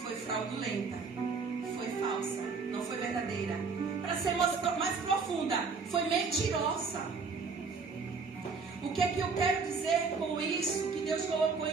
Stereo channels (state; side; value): quieter; left; 4.9 dB